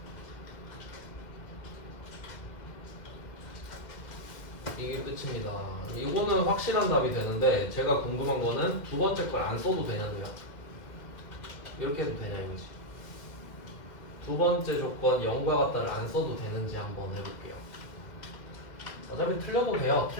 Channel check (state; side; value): late; right; 2.1 ms